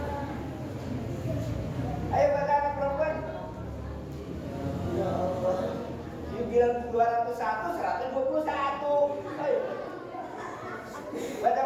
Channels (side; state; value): both; identical; correlation 1.00